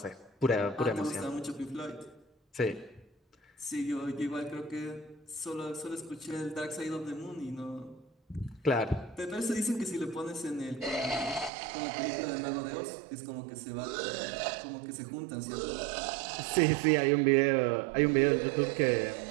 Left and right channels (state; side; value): drops out; left; at 11.5 s